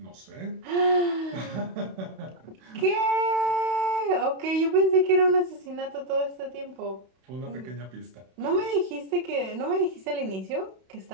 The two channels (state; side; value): late; left; 31 ms